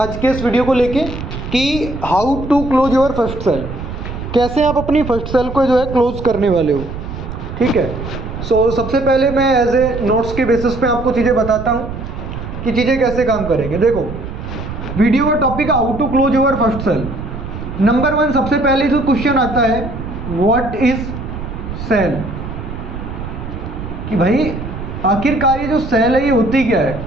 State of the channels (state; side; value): noise; right; rumble, 8 dB below the sound